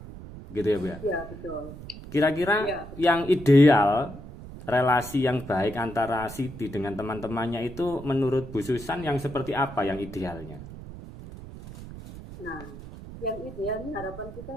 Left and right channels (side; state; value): right; noise; rumble, 14 dB below the sound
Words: begitu ya Bu ya? Iya betul. Kira-kira yang ideal, relasi yang baik antara Siti dengan teman-temannya itu menurut Bu Susan yang seperti apa yang idealnya? Nah, yang idealnya harapan kita